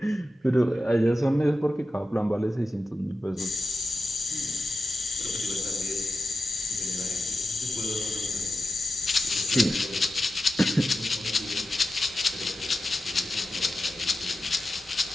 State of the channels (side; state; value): both; normal; correlation 0.91